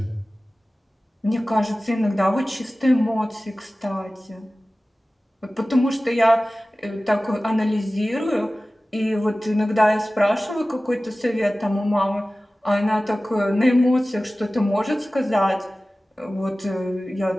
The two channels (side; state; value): both; normal; correlation 0.97